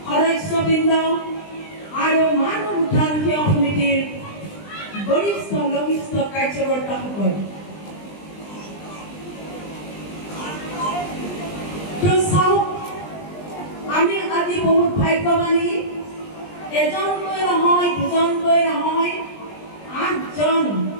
সদস্যবৃন্দ আৰু মানৱ উদ্ধাৰ সেৱা সমিতিৰ বৰিষ্ঠ লঘিষ্ঠ কাৰ্যকৰ্তাসকল আমি আজি বহুত ভাগ্যৱানী এজনকৈ নহয় দুজনকৈ নহয় 8জন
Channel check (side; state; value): right; late; 20 ms